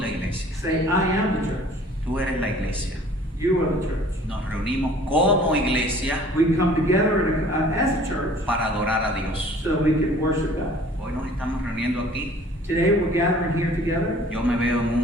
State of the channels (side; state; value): both; normal; correlation 0.51